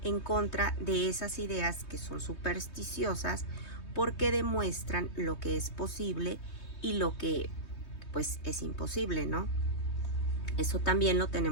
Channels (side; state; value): right; late; 3.2 ms